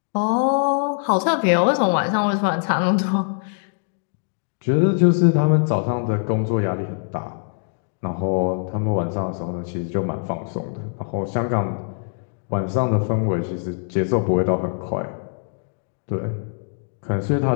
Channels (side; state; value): right; silent; digital silence